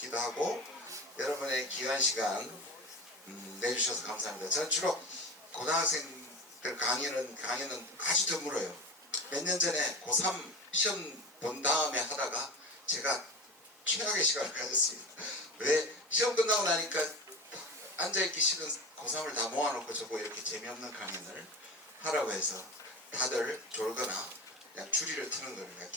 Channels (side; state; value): both; normal; correlation 0.29